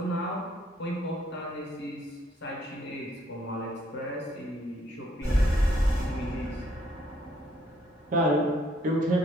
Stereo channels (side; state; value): both; normal; correlation 0.67